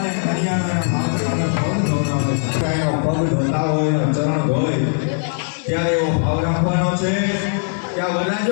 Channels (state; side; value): silent; right; 66 dB below the other